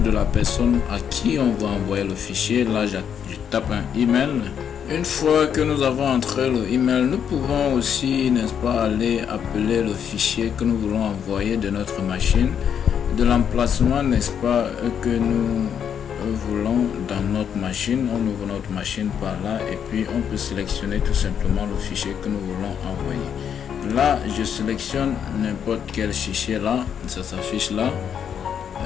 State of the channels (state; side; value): quieter; right; 8.2 dB